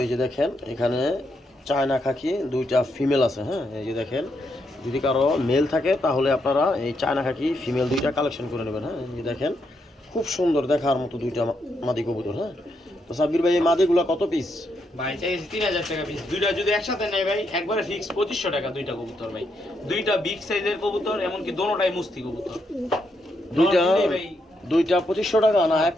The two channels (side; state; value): both; normal; correlation 0.79